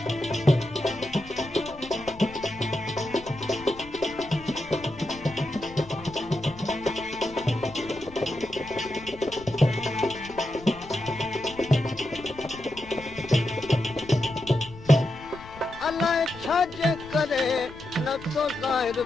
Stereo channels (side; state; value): left; noise; rumble, 18 dB below the sound